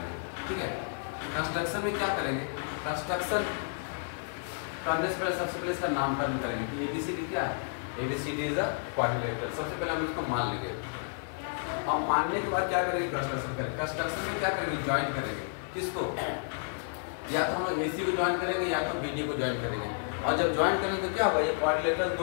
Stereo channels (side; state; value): right; silent; 57 dB below the other